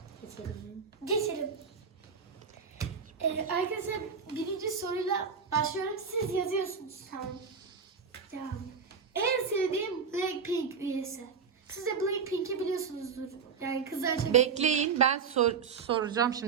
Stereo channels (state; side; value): quieter; left; 6.1 dB